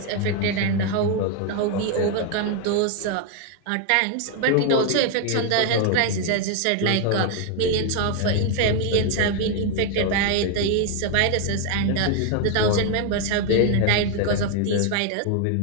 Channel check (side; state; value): both; different; correlation 0.01